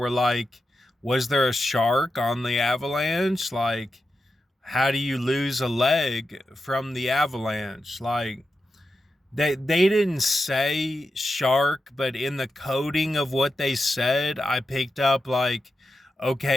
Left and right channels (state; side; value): normal; both; correlation 0.89